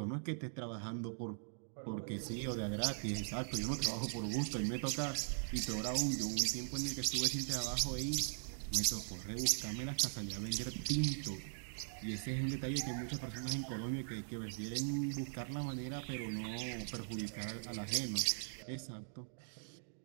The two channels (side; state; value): left; silent; digital silence